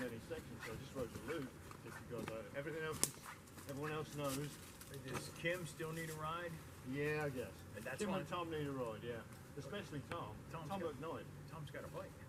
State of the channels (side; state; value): both; identical; correlation 1.00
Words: any section, so I just wrote the loop, just because everything else, everyone else knows. Does Kim still need a ride? Yeah, I guess. That's Tim fine. and Tom need a ride, yeah. Especially Tom. Tom's Tom got- McKnight. Tom's got a bike.